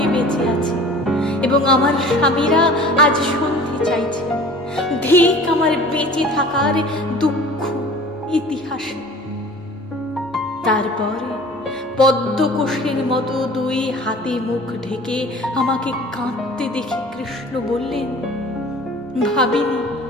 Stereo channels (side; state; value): both; normal; correlation 0.44